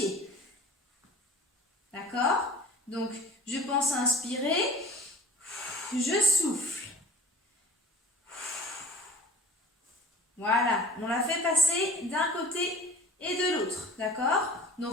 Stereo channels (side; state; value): both; normal; correlation 0.46